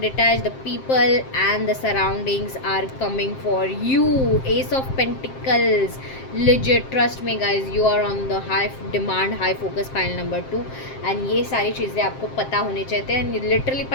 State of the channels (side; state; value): right; late; 7.6 ms